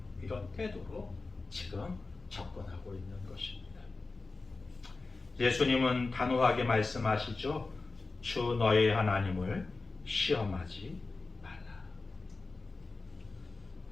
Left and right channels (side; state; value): right; quieter; 3.7 dB